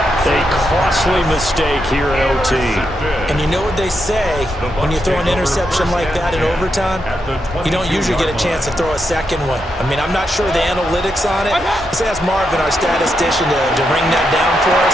A costly mistake here in OT. And you know what they say, when you throw an interception like that in overtime, you don't usually get a chance to throw a second one. I mean, I'm not sure the analytics on it. Let's ask Marvin, our statistician, to ring that down for us.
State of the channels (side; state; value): both; normal; correlation 0.83